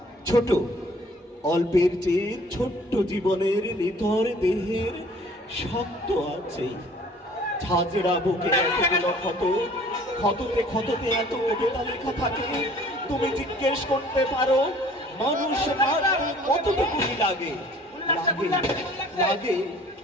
ছোট, অল্পের চেয়ে ছোট্ট জীবনের নিথর দেহের শক্ত আছে। ঝাঁঝরা বুকে এতগুলো ক্ষত, ক্ষততে ক্ষততে এত কবিতা লেখা থাকে। তুমি জিজ্ঞেস করতে পারো মানুষ মারতে কতটুকুই লাগে? লাগে, লাগে।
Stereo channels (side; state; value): both; normal; correlation 0.53